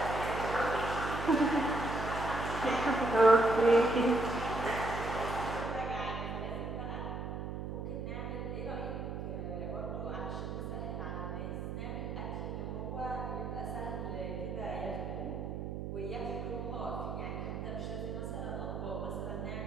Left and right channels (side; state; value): right; noise; hum, 5 dB below the sound